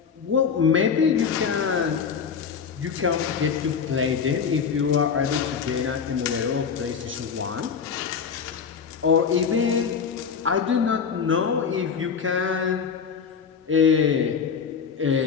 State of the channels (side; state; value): right; quieter; 6.4 dB